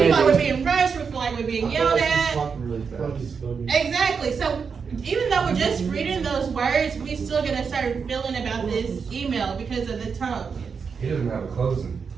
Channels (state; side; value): quieter; left; 5.8 dB